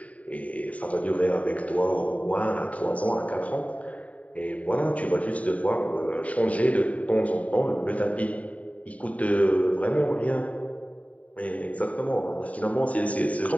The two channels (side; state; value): right; late; 0.068 ms